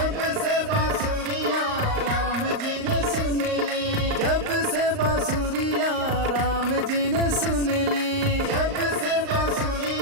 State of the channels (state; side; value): late; left; 38 ms